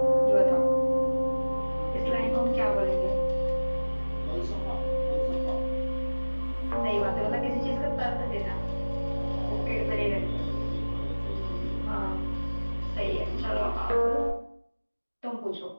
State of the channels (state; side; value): inverted; both; correlation -1.00